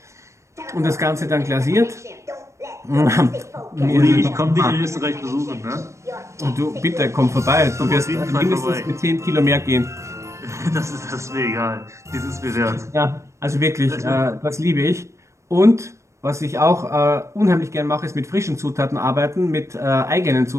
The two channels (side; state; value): left; late; 0.14 ms